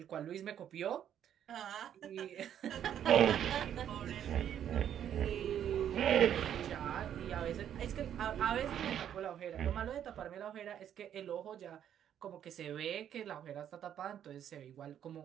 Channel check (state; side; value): quieter; left; 9.8 dB